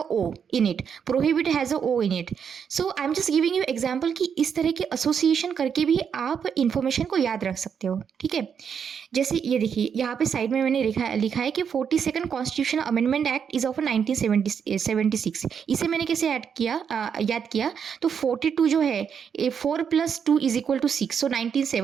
O in it. Prohibit has a O in it. So I'm just giving you example कि इस तरह के association करके भी आप information को याद रख सकते हो. ठीक है, जैसे ये देखिए यहाँ पे साइड में मैंने लिखा है कि 42nd constitution amendment act is of 1976. इसे मैंने कैसे याद किया, तो 42 जो है 4 + 2 = 6, सो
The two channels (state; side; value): quieter; left; 7.3 dB